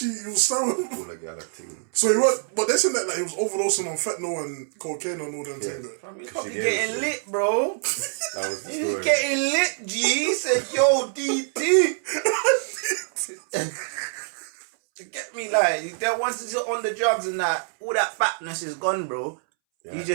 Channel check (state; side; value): silent; left; 62 dB below the other